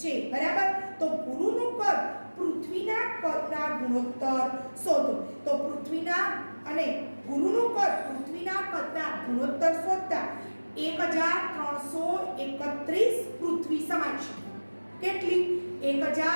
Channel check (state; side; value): inverted; both; correlation -1.00